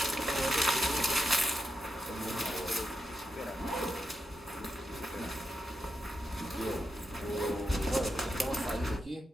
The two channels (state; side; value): normal; both; correlation 0.86